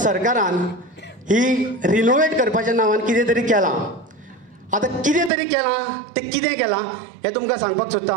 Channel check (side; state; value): left; drops out; at 5.3 s